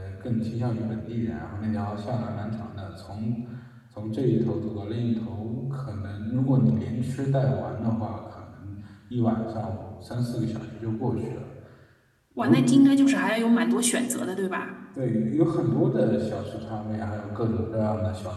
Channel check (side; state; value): both; identical; correlation 1.00